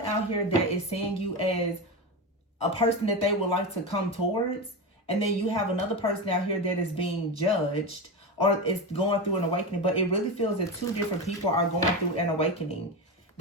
out here that is seeing you as a person that they would like to come towards. And then you have another person out here that is being judged or is going through an awakening. But it really feels that two different people are going through an awakening.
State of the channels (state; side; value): normal; both; correlation 0.19